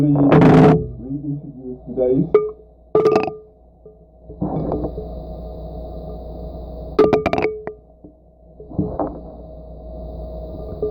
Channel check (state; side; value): identical; both; correlation 1.00